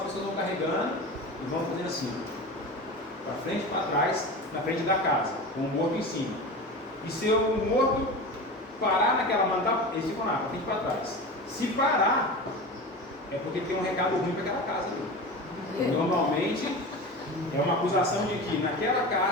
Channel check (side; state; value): both; normal; correlation 0.29